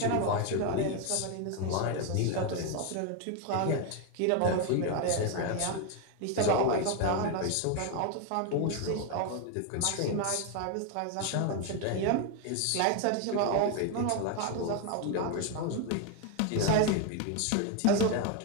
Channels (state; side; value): different; both; correlation 0.01